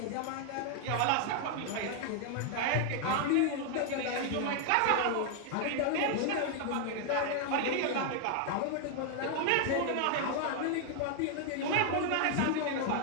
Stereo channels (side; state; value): both; different; correlation 0.00